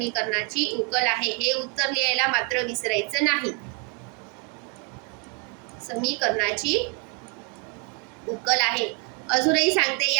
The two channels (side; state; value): left; quieter; 33.8 dB